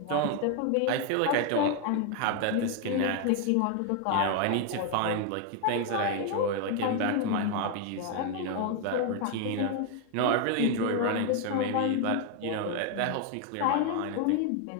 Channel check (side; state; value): both; different; correlation 0.01